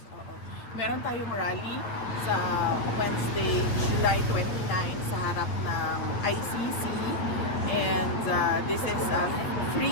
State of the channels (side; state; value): right; late; 8.3 ms